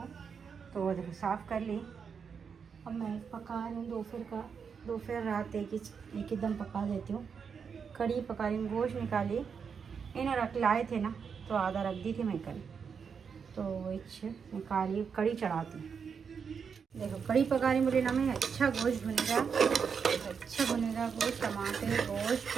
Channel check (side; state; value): left; quieter; 6.3 dB